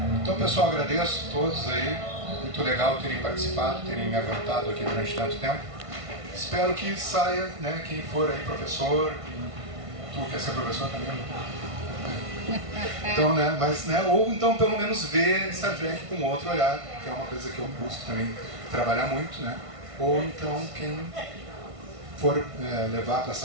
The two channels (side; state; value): left; late; 1.5 ms